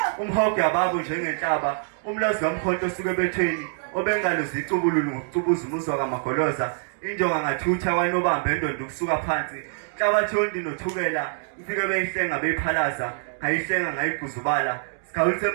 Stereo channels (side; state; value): left; silent; digital silence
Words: umhogo yababo njengenhlaba. umlazi kamkhonto osuke ebethweni obengalo zicubululu ngokucubuza umuzwa kamagoloza. injonga ngathutha kwanobamba endondo ukusuka phansi. Inhlabathi yondi nothukela ifike beyihlenga beyiphalaza, ngayihlenga ngayiguzubala. Sikhawulise